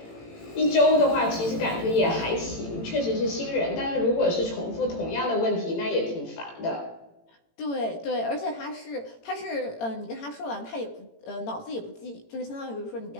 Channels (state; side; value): late; right; 18 ms